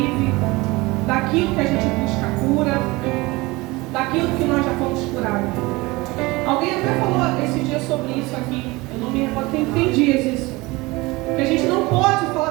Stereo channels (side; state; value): left; quieter; 22.5 dB